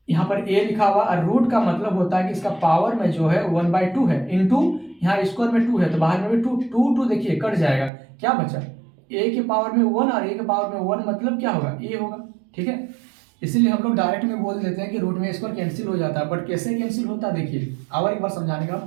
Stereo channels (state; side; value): drops out; left; at 7.9 s